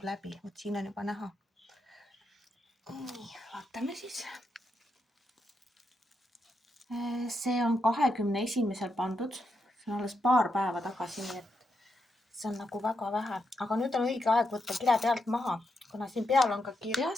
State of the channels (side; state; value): both; normal; correlation 0.83